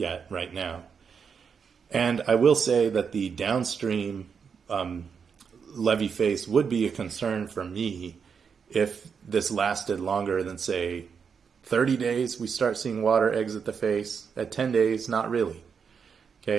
right now. And I will say that the downstream levee face would be a concern for me if this lasted longer than, say, 30 days. We start seeing water exit the face. At 10 days, not really.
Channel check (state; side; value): quieter; left; 6.4 dB